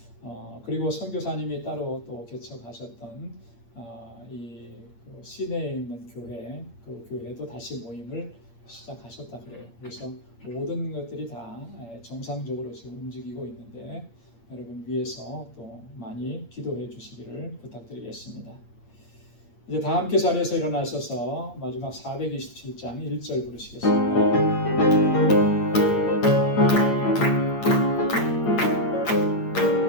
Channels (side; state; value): right; late; 8.7 ms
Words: 그리고 선교사님이 따로 또 개척하셨던 그 시내에 있는 교회, 그 교회도 다시 모임을 시작하셨다 그래요. 그래서 모든 것들이 다 정상적으로 지금 움직이고 있는데 여러분 위해서 또 많이 기도해 주시기를 부탁드리겠습니다. 이제 다 함께 자리에서 일어나셔서 마지막 427장 1절 부르시겠습니다.